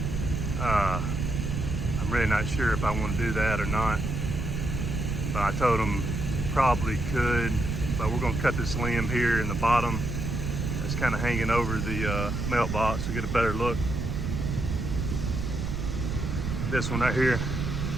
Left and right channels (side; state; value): right; noise; rumble, 2 dB below the sound